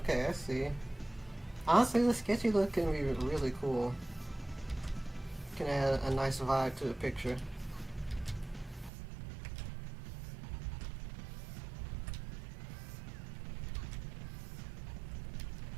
I see. Honestly, the sketchy look can be really cool. Can add a nice vibe to the picture.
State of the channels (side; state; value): left; drops out; at 8.9 s